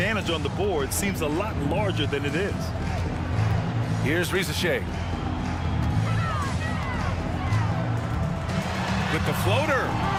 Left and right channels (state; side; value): identical; both; correlation 1.00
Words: on the board seems a lot larger than it is. Here's Risache. With the floater.